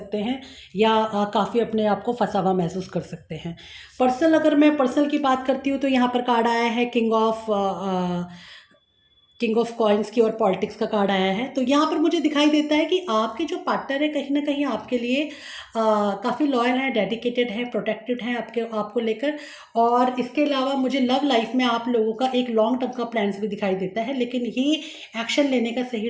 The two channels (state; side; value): identical; both; correlation 1.00